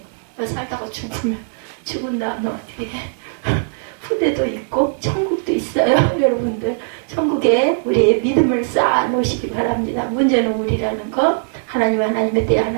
살다가 죽은 다음에 어떻게 해? 후대도 있고 천국도 있어요. 여러분들 천국에 우리의 믿음을 쌓아 놓으시기 바랍니다. 문제는 우리라는 것, 하나님의 때에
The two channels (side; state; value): left; silent; 66 dB below the other